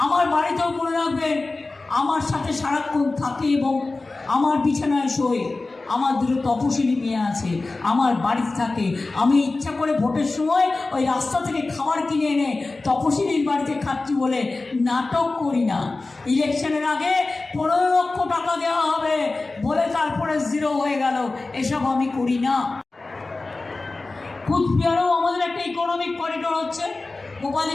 আমার বাড়িতেও মনে রাখবেন, আমার সাথে সারাক্ষণ থাকে এবং আমার বিছানায় শোয় আমার 2 তপশিলি মেয়ে আছে, আমার বাড়িতে থাকে। আমি ইচ্ছা করে ভোটের সময় ওই রাস্তা থেকে খাবার কিনে এনে তপশিলির বাড়িতে খাচ্ছি বলে নাটক করি না। ইলেকশনের আগে 15 লক্ষ টাকা দেওয়া হবে বলে তারপরে 0 হয়ে গেল, এসব আমি করি না। কুচবিহারেও আমাদের একটা ইকোনমিক করিডোর হচ্ছে,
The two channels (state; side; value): quieter; right; 3.4 dB